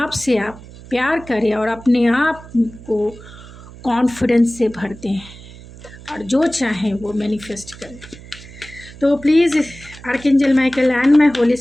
से आप प्यार करें और अपने आप को कॉन्फिडेंस से भर दें और जो चाहें वो मैनिफेस्ट करें। तो please archangel Michael and my Holi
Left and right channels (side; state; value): right; noise; hum, 18 dB below the sound